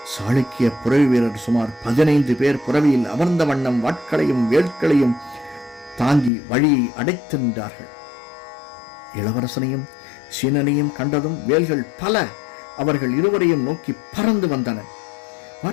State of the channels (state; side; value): drops out; right; at 6.3 s